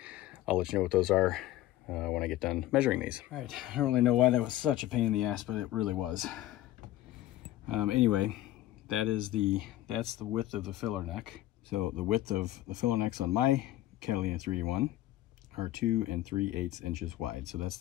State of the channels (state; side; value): quieter; right; 14.7 dB